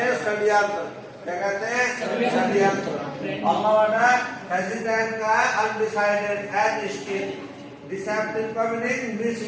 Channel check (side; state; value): both; identical; correlation 1.00